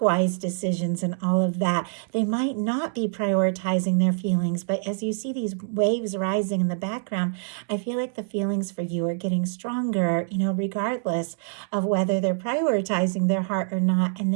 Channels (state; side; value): silent; left; 62 dB below the other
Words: wise decisions and all of that, they might not be prioritizing their feelings. But as you see these waves rising in the background, I feel like the feelings for you are getting stronger, regardless of whether they're prioritizing their heart or not. And